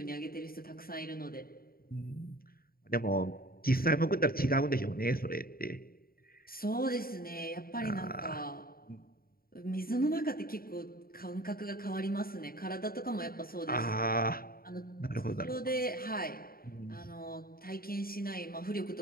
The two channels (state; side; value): late; right; 0.43 ms